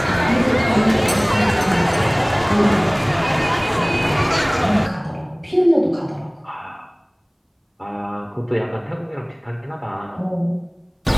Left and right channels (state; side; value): identical; both; correlation 1.00